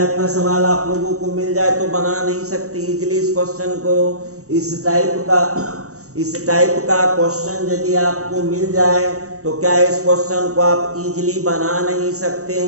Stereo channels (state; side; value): late; left; 0.65 ms